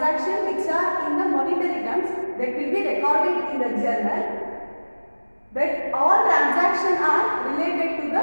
which are in the monetary terms that will be recorded in the journal. But all transactions are related to the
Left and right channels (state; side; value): inverted; both; correlation -1.00